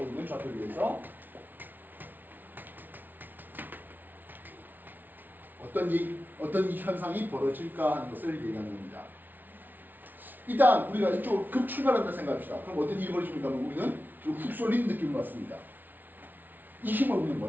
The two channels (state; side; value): late; left; 0.086 ms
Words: 있는 좌표계에서 어떤 현상이 벌어질까 하는 것을 얘기하는 겁니다. 일단 우리가 이쪽으로 급 출발한다 생각합시다. 그럼 어떤 일이 벌어집니까? 우리는 좀 훅 쏠리는 느낌을 받습니다. 이 힘을 우리는